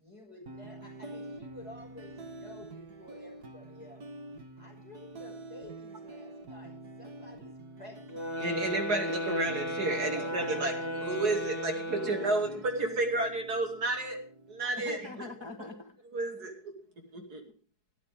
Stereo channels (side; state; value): left; late; 4.7 ms